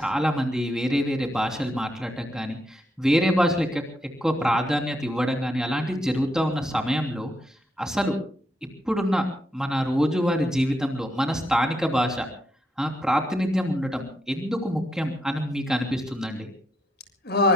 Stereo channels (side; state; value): both; normal; correlation 0.79